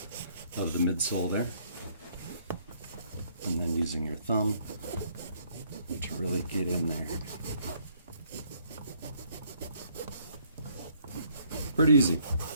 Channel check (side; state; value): both; inverted; correlation -0.66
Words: of the midsole there, and then using your thumb to really get in there. Pretty easy.